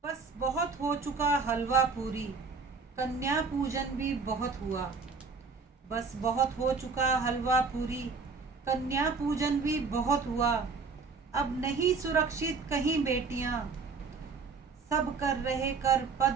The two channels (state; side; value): quieter; left; 4.8 dB